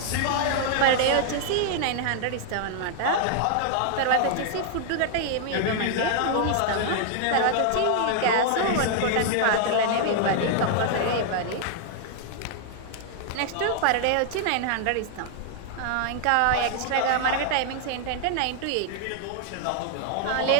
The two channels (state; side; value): different; both; correlation -0.01